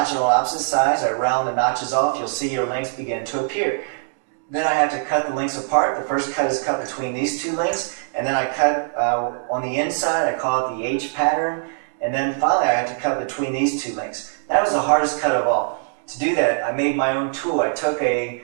it on opposite sides, I round the notches off, you'll see your links begin to appear. Then I have to cut the links apart. The first cut is cut between these 2 links, and then I cut on the inside, I call it the H pattern, and then finally I have to cut between these 2 links. That was the hardest cut of all. To do that, I made my own tool. I took a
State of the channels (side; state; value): left; silent; digital silence